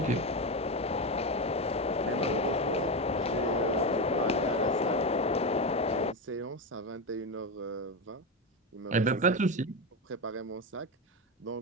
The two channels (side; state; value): both; normal; correlation 0.15